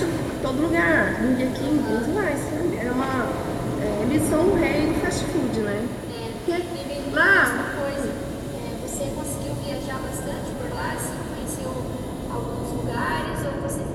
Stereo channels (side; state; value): both; identical; correlation 1.00